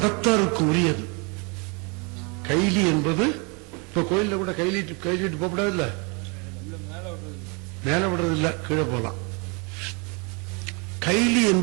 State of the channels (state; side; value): quieter; left; 32.4 dB